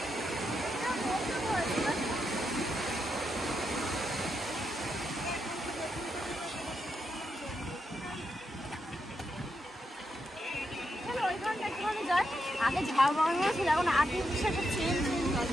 আগে ঝাল বানানো ছিল, এখন আর্টিফিশিয়াল চেঞ্জ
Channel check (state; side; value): normal; both; correlation 0.83